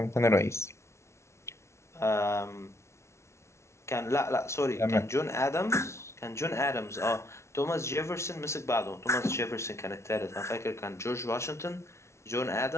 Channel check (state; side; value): late; right; 0.13 ms